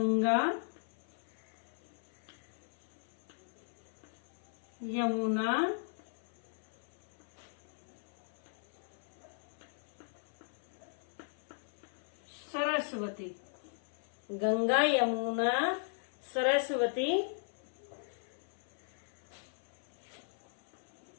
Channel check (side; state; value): right; silent; 53 dB below the other